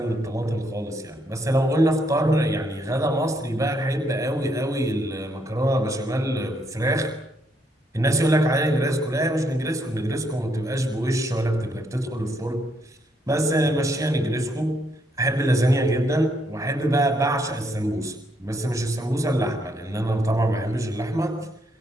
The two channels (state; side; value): normal; both; correlation 0.74